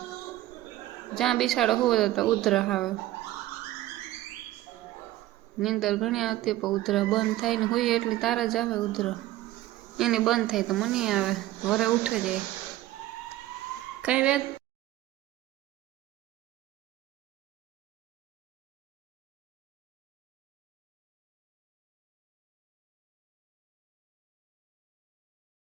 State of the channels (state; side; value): quieter; left; 15.4 dB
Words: જ્યાં બિસાડો હુવે તો ઉધરસ આવે. નીંદર ઘણી આવતી પણ ઉધરસ બંધ થાય ને હોય એટલી તાર જ આવે ઉધરસ. એની બંધ થાય તો મને આવે વરે ઉઠે જાય. કઈ વેદ